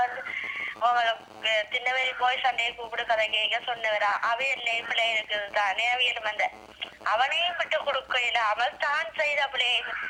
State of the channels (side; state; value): both; identical; correlation 1.00